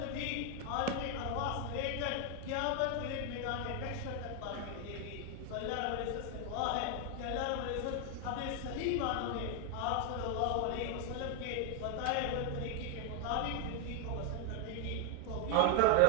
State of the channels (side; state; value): both; different; correlation 0.00